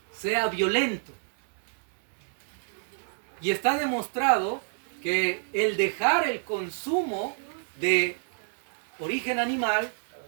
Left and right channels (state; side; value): silent; left; digital silence